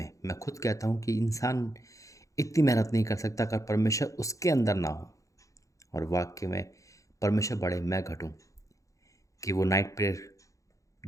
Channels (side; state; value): right; late; 0.16 ms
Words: मैं खुद कहता हूँ कि इंसान इतनी मेहनत नहीं कर सकता अगर परमेश्वर उसके अंदर ना हो। और वाक्य में परमेश्वर बढ़े मैं घटूँ, कि वो नाइट प्रेयर